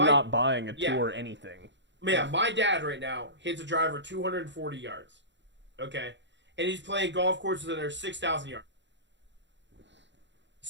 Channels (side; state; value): left; late; 0.52 ms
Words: not buying a tour anything. Yeah, my dad right now hits a driver 240 yards. Okay. And he's playing golf courses that are 6,000 yards.